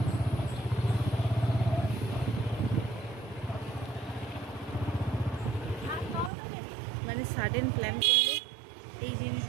মানে সাডেন প্ল্যান করলে এই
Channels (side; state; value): left; drops out; at 6.3 s